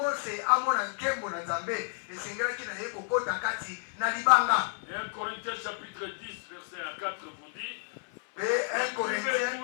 amona nkembo na nzambe esengelaki na ye kokota kati na libanga. Et 1 Corinthiens chapitre 10, verset 4 vous dit, mpe 1 Corinthiens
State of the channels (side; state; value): right; silent; 57 dB below the other